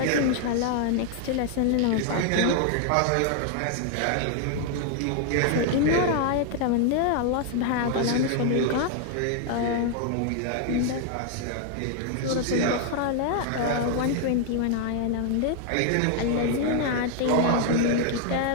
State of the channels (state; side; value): different; both; correlation 0.00